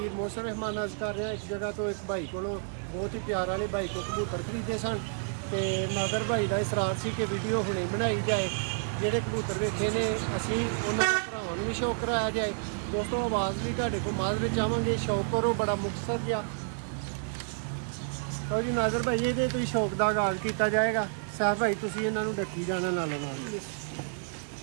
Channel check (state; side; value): silent; left; digital silence